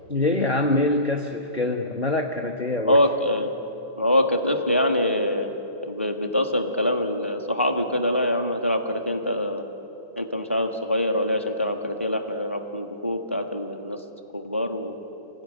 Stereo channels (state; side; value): inverted; both; correlation -0.50